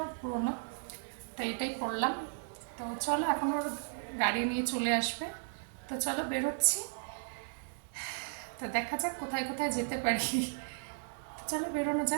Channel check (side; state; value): left; silent; digital silence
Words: পুরোনো, তো এটাই পরলাম। তো চলো, এখন ওর গাড়ি নিয়ে চলে আসবে, তো চলো বেরোচ্ছি। তো দেখা যাক কোথায় কোথায় যেতে পারি। চলো বেরোনো